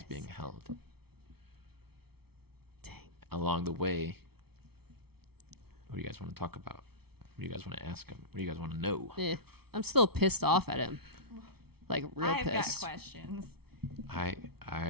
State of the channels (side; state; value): left; late; 0.96 ms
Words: being held. Dang. Along the way, what do you guys want to talk about? What do you guys want to ask him? What do you guys want to know? I'm still pissed off at him. Like, real I've got pissed. questions.